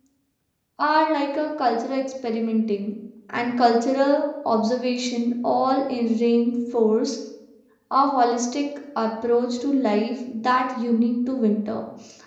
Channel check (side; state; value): both; identical; correlation 1.00